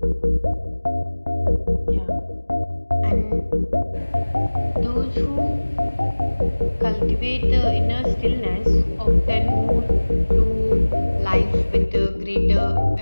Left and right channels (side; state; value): both; inverted; correlation -1.00